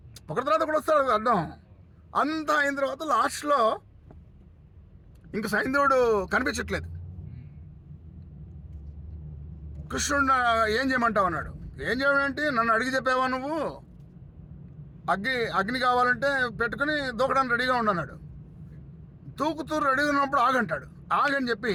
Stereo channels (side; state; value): both; identical; correlation 1.00